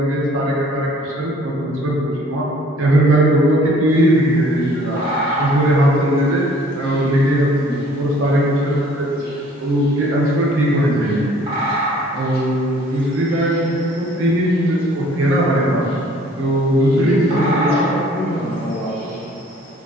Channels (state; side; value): normal; both; correlation 0.56